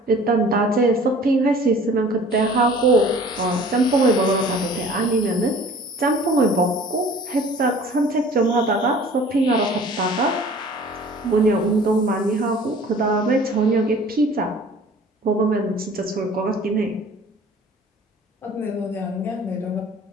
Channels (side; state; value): both; normal; correlation 0.48